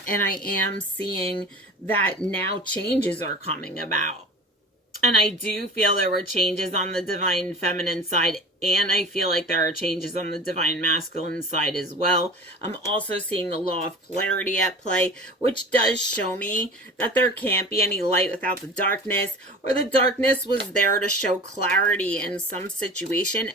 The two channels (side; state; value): both; normal; correlation 0.37